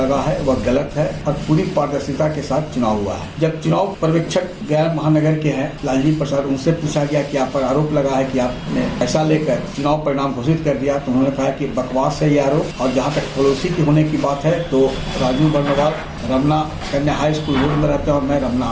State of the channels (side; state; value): both; identical; correlation 1.00